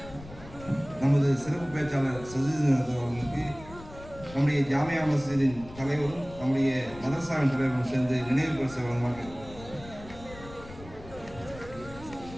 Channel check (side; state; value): left; noise; rumble, 17 dB below the sound